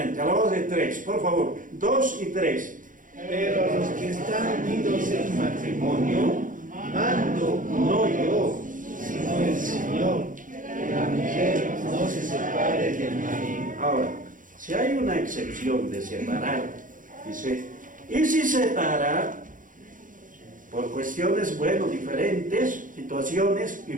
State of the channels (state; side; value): late; left; 0.38 ms